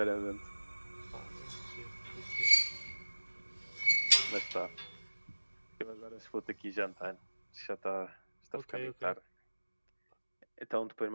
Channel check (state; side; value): inverted; both; correlation -1.00